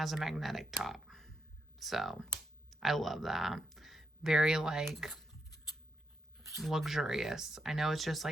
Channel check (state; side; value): normal; both; correlation 0.81